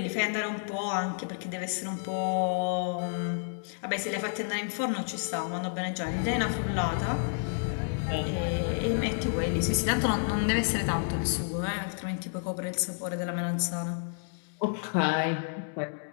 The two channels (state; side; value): silent; right; digital silence